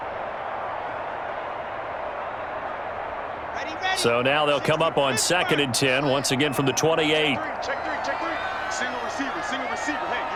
So now they'll come up on 2nd and 10, once again from the 28. Check three. Single receiver. Hey,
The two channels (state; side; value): identical; both; correlation 1.00